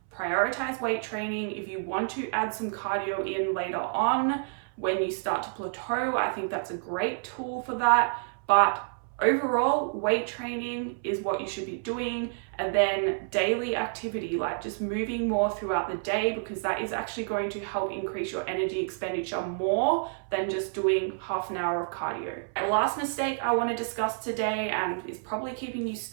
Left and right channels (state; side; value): silent; left; 59 dB below the other